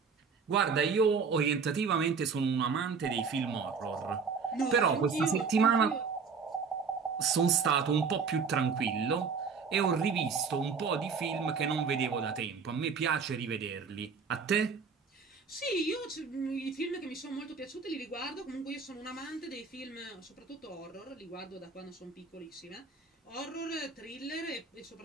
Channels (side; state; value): left; quieter; 5.5 dB